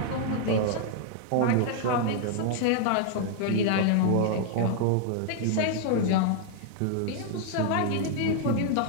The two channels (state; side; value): different; both; correlation 0.00